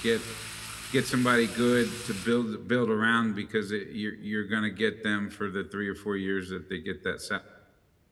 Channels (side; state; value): both; identical; correlation 1.00